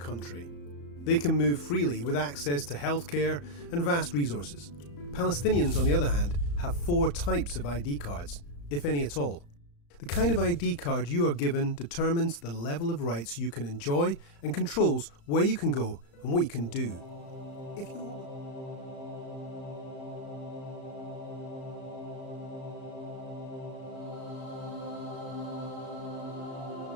They can move freely with access to healthcare and vast resources. Palestinians, on the other hand, have 4 types of ID cards, if any at all. The kind of ID card you are given determines the level of rights you can enjoy and controls where you can go and what you can do. If you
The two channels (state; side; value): late; right; 35 ms